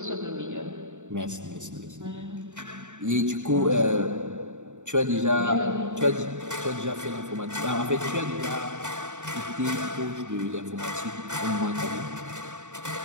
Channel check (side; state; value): left; late; 0.85 ms